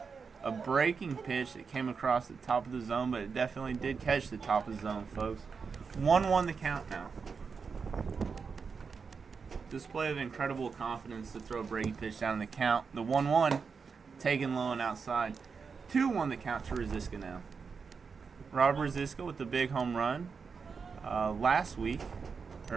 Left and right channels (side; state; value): left; quieter; 5.4 dB